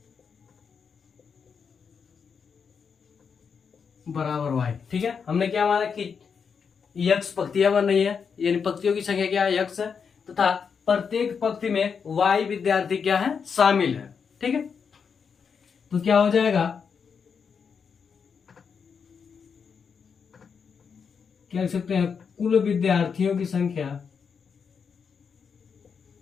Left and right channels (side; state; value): right; quieter; 6.3 dB